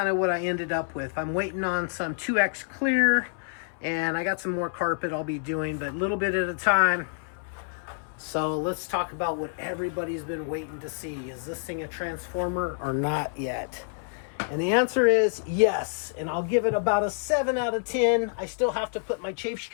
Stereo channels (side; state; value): right; silent; 59 dB below the other